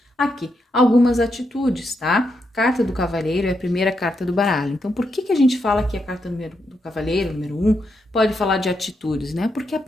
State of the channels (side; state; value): both; normal; correlation 0.82